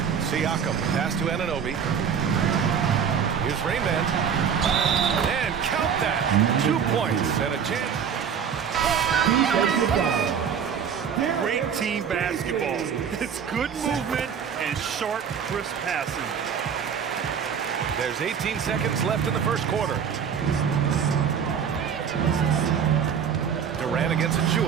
Siakam. Pass to Anunoby. Here's Rainman. And count that. 2 points and a chance. Great team basketball. It's good movement and sharp, crisp passing. There's 18 seconds left in the first quarter. Durant against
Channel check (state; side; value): quieter; left; 7.4 dB